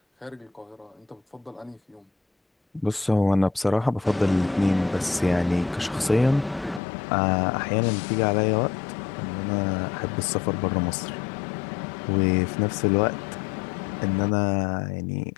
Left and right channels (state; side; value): drops out; right; at 6.8 s